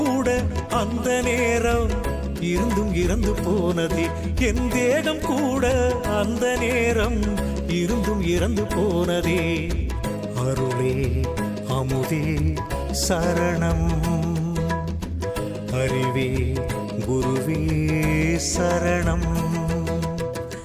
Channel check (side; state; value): both; identical; correlation 1.00